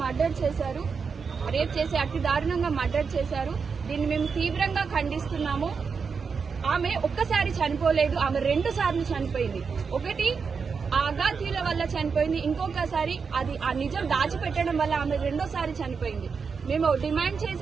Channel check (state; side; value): quieter; left; 5.5 dB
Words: మర్డర్ చేశారు. దీన్ని మేము తీవ్రంగా ఖండిస్తున్నాము. ఆమె ఒక్కసారి చనిపోలేదు, ఆమె 2 సార్లు చనిపోయింది. ఒకటి ఆ అగాధ్యుల వల్ల చనిపోయింది, ఇంకొకసారి అది ఆ నిజం దాచిపెట్టడం వల్ల ఆమె 2వ సారి చనిపోయింది. మేము డిమాండ్